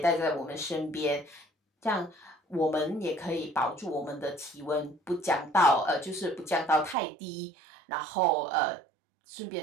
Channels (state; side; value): drops out; left; at 7.0 s